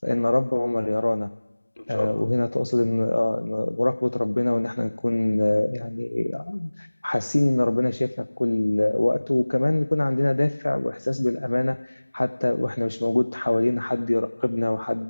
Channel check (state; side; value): inverted; both; correlation -1.00